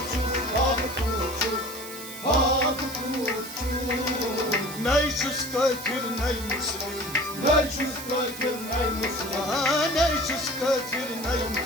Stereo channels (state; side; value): noise; right; hiss, 12 dB below the sound